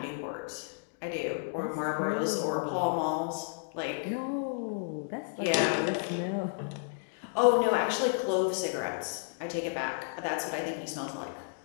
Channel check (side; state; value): right; silent; digital silence